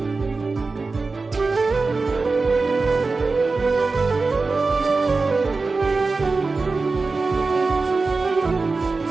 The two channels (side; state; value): left; quieter; 3.9 dB